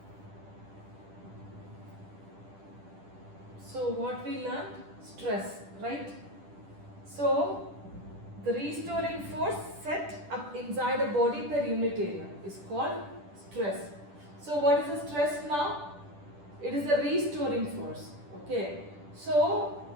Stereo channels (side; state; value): left; late; 10 ms